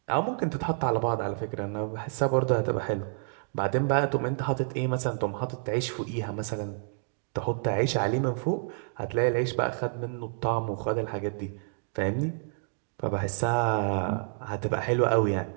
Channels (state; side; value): silent; left; digital silence